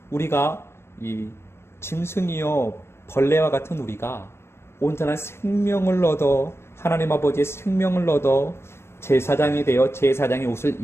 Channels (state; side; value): late; right; 0.12 ms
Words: 우리가 이 짐승이요 벌레와 같은 우리가 온전한 생명을 얻어, 하나님 아버지의 생명을 얻어 제사장이 되어 제사장의 옷을